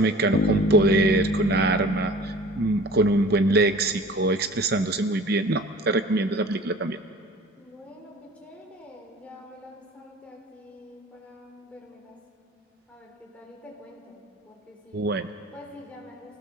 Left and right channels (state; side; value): normal; both; correlation 0.44